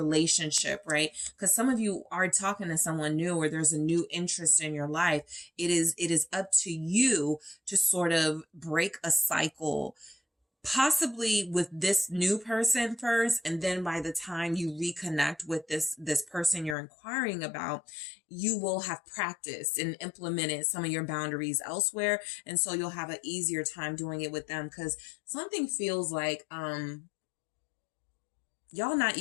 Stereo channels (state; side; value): drops out; right; at 16.8 s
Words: right? Because some of you are talking to someone new, or there's a new interest in your life. It is up to you to sort of break a cycle, possibly with this new person first. And then by the time you reconnect with this person you're inquiring about, you will have practiced and implemented some of your boundaries elsewhere. And so you'll have an easier time doing it with them, because something feels like, y'all not